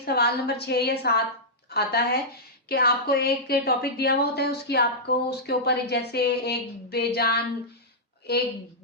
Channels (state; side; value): normal; both; correlation -0.11